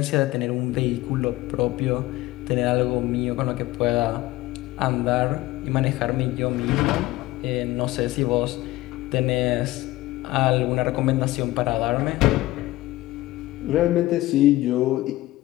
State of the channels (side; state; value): right; quieter; 17.8 dB